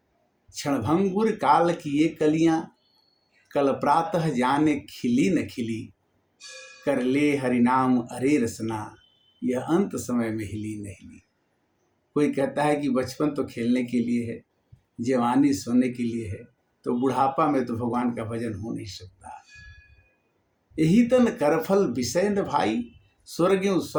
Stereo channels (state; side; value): identical; both; correlation 1.00